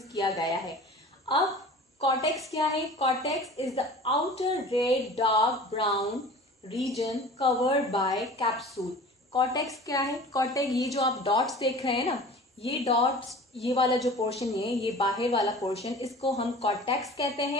किया गया है। अब कॉर्टेक्स क्या है, cortex is the outer red dark brown region covered by capsule. Cortex क्या है, कॉर्टेक्स ये जो आप डॉट्स देख रहे हैं ना, ये डॉट्स, ये वाला जो पोर्शन है, ये बाहर वाला पोर्शन, इसको हम कॉर्टेक्स कहते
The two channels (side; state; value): both; normal; correlation 0.41